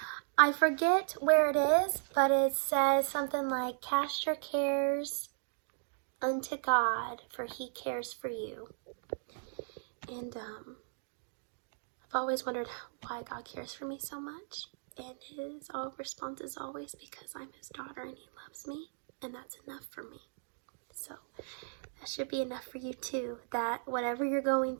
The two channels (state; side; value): silent; left; digital silence